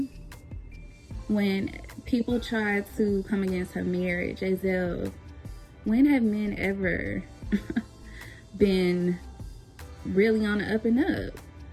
when people try to come against her marriage, as if, when have men ever been really on the up and up?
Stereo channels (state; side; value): identical; both; correlation 1.00